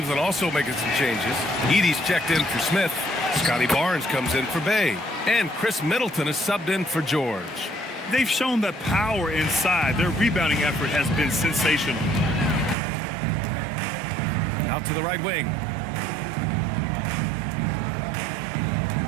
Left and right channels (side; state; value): left; drops out; at 12.8 s